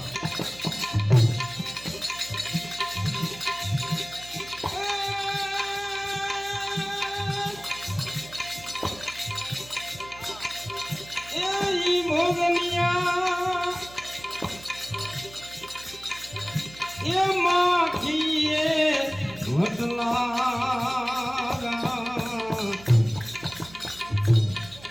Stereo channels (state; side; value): noise; right; hum, 19 dB below the sound